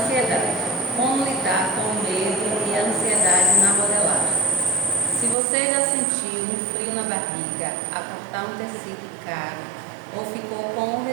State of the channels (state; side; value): drops out; left; at 5.4 s